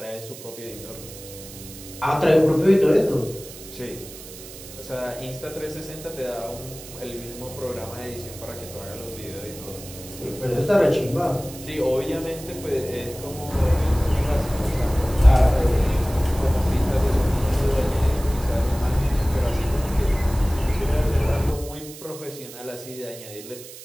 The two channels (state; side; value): noise; right; hiss, 15 dB below the sound